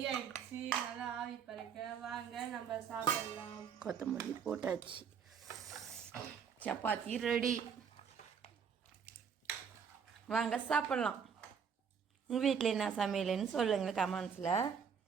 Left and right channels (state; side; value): quieter; left; 6.9 dB